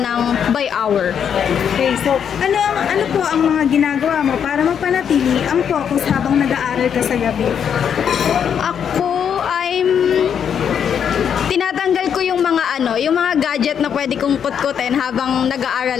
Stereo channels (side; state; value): right; quieter; 8.0 dB